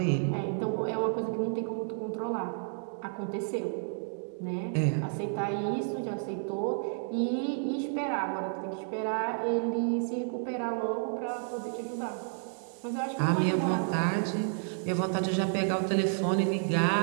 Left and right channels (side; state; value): left; silent; 57 dB below the other